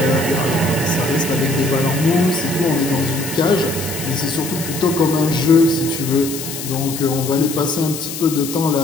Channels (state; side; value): noise; left; hiss, 8 dB below the sound